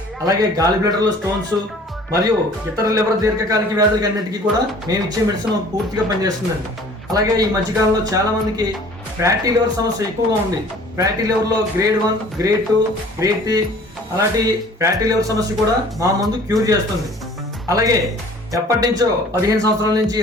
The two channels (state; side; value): normal; both; correlation 0.50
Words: అలాగే గాలి బ్లడర్లో స్టోన్స్ మరియు ఇతర లివర్ దీర్ఘకాలిక వ్యాధులకి అన్నిటికీ కూడా మేము ఇచ్చే మెడిసిన్ పూర్తిగా పనిచేస్తుందండి. అలాగే ఈ మధ్యకాలంలో చాలా మందికి ఫ్యాటీ లివర్ సమస్య ఎక్కువగా ఉంది. ఫ్యాటీ లివర్లో గ్రేడ్ 1, గ్రేడ్ 2, గ్రేడ్ 3 అలాంటి ఫ్యాటీ లివర్ సమస్య కూడా మా ముందు క్యూర్ చేస్తుంది. అలాగే ఎప్పటి నుంచో 15 సంవత్సరాల నుంచి